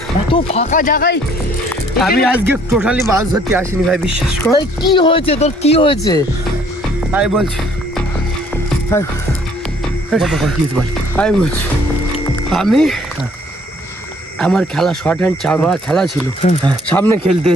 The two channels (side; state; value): both; normal; correlation 0.61